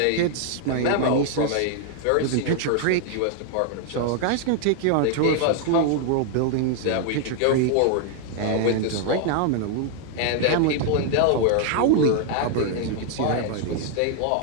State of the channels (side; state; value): both; different; correlation 0.00